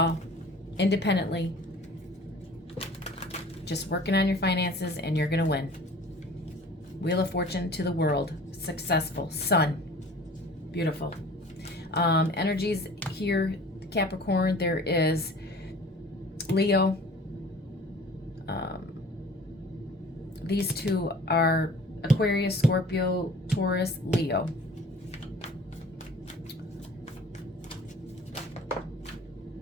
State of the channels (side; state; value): both; normal; correlation 0.46